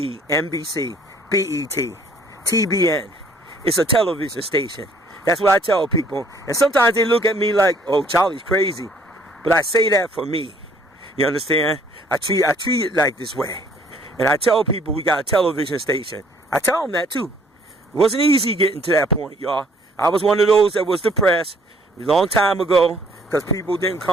NBC, BET, TBN. It's a television station. That's what I tell people. And sometimes they look at me like, oh, Charlie's crazy. But I say that for me. You understand? I treat it like this way. And I tell people we got a television station. I tell them that too. It wasn't easy getting to that point, y'all. I was one of those that was depressed a long time ago because people didn't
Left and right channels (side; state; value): both; normal; correlation 0.60